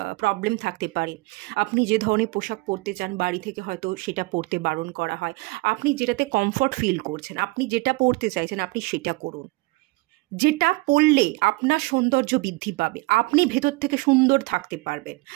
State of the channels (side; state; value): left; quieter; 23.8 dB